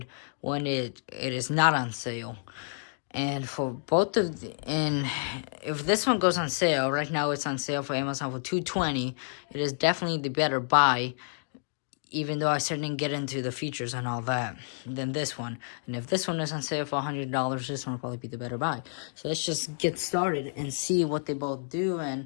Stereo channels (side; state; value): right; silent; digital silence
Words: when it is not on sale. And for both of and if this one goes on sale right now, it's on sale for Amazon for $220. It is definitely the better buy, even though I certainly didn't get into the features and all that, than this one. And if this one is on sale for $100, this one will probably be the better buy. So let's just get started and see what they both do